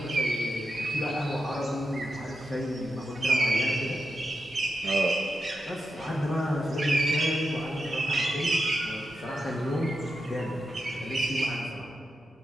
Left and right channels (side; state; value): both; normal; correlation 0.87